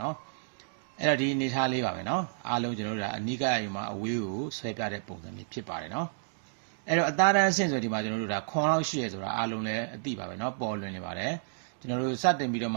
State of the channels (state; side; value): silent; left; digital silence